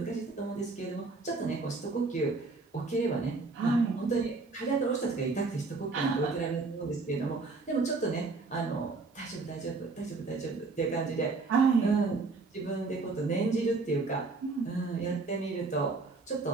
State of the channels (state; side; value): quieter; left; 3.8 dB